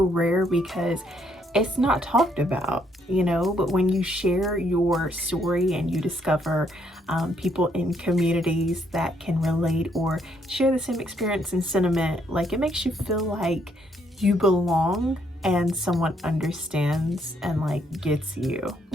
rare because it's not talked about, but when you share your story and you discover people in communities that can relate or share the same experience and sentiment, like it makes you feel like you belong and someone understands and like gets you.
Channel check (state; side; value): normal; both; correlation 0.72